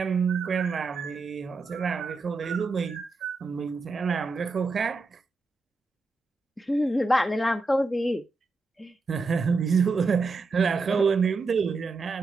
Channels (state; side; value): quieter; left; 3.7 dB